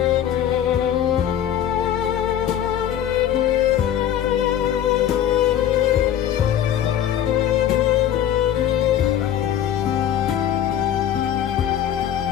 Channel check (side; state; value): right; quieter; 10.5 dB